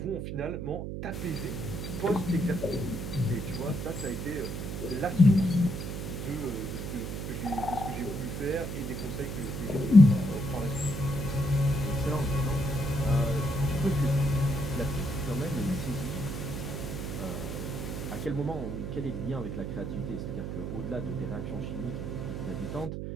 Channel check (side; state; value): right; noise; hum, 5 dB below the sound